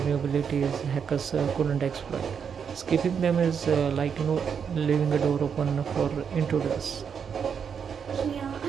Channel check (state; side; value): quieter; left; 7.0 dB